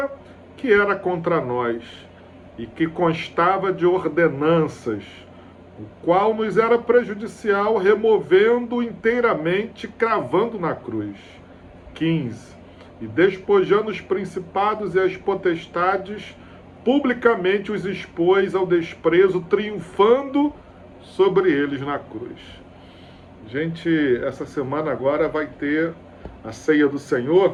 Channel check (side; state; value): both; identical; correlation 1.00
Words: que era contra nós e que constava de ordenanças, o qual nos era prejudicial, removendo inteiramente, cravando na cruz. 15. E despojando os principados e as potestades, publicamente os expôs ao desprezo, triunfando sobre eles na cruz. Gente, essa semana agora vai ter a ceia do